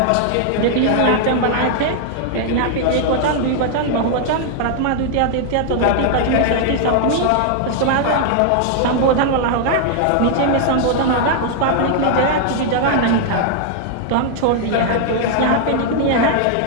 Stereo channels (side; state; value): both; different; correlation 0.00